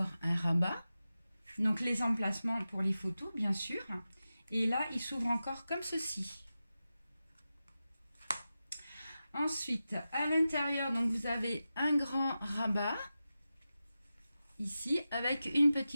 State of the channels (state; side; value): inverted; both; correlation -0.93